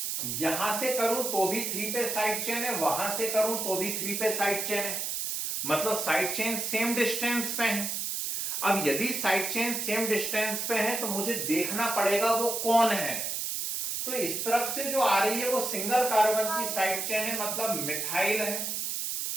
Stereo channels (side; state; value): right; noise; hiss, 2 dB below the sound